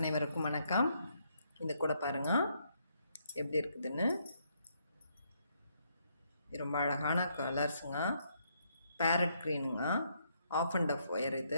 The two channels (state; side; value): inverted; both; correlation -0.73